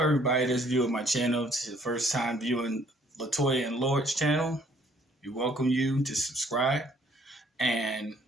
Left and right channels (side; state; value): both; normal; correlation 0.62